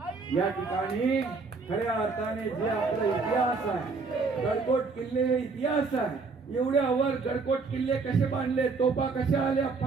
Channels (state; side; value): quieter; left; 4.3 dB